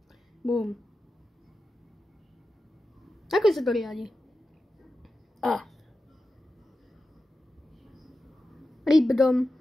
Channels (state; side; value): normal; both; correlation 0.92